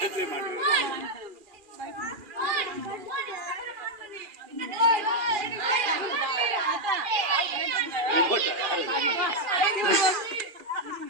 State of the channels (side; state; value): left; late; 2.4 ms